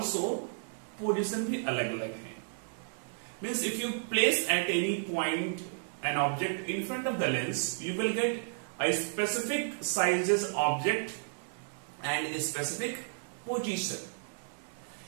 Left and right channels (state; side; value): silent; left; 56 dB below the other